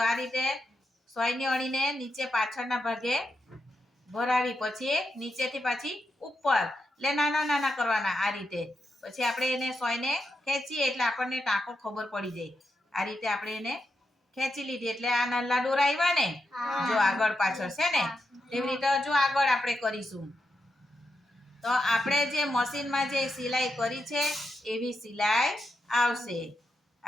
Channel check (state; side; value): normal; both; correlation 0.86